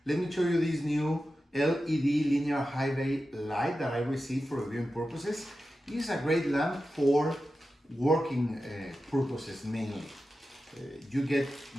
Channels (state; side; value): normal; both; correlation 0.92